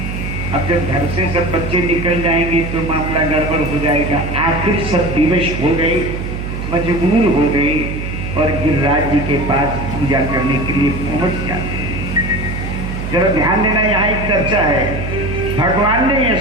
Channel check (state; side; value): noise; right; hum, 5 dB below the sound